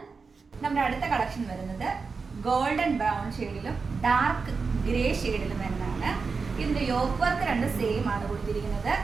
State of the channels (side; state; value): left; quieter; 4.8 dB